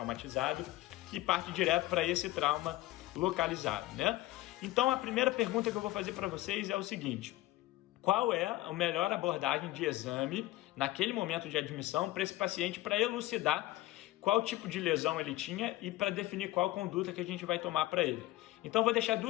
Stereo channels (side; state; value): right; quieter; 17.5 dB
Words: e parte direto para esse trauma localizado, né? Então a primeira pergunta que eu vou fazer para vocês é o seguinte: qual é a melhor abordagem de exame naquele momento de admissão para esse paciente para elucidar qual tipo de lesão ele tinha e para definir qual conduta que a gente vai tomar para ele? Então vou deixar